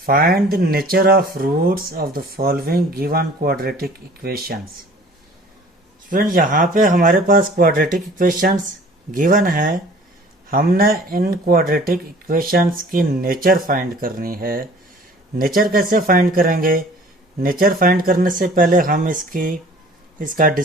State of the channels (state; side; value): normal; both; correlation 0.49